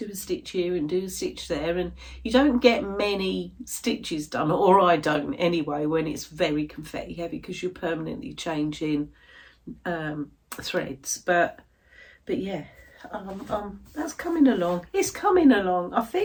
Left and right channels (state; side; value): identical; both; correlation 1.00